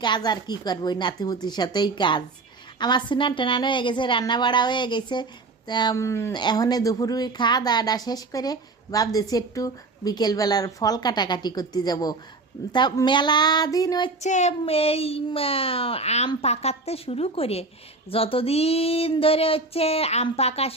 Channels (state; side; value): quieter; left; 3.5 dB